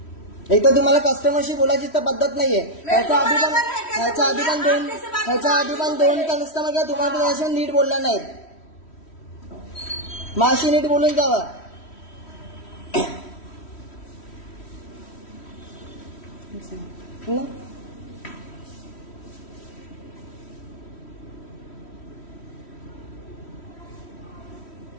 एक तर तुम्हाला कस्टमरशी बोलायची तर पद्धत नाहीये. ह्याच्या आधी पण दोन कस्टमर तुम्हाला त्याच्याशी नीट बोलला नाहीत. माशी नीट बोलून जावा.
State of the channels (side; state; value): right; late; 3.1 ms